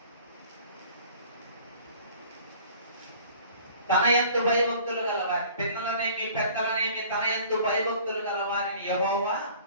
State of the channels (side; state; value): both; inverted; correlation -0.50